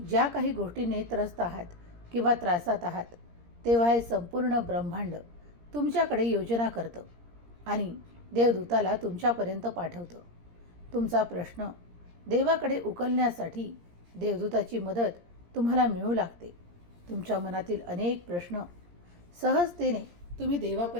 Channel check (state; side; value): late; left; 17 ms